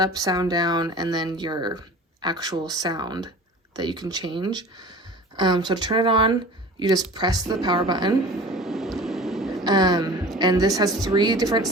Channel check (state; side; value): normal; both; correlation 0.40